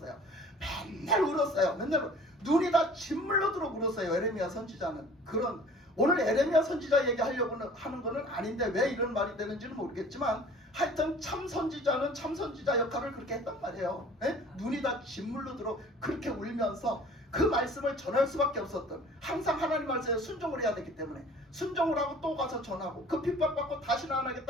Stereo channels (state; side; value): normal; both; correlation 0.48